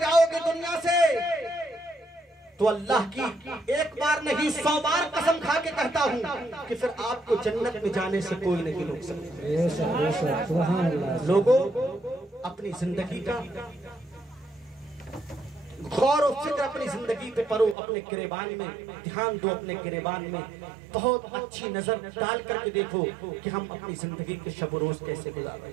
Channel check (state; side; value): drops out; left; at 17.8 s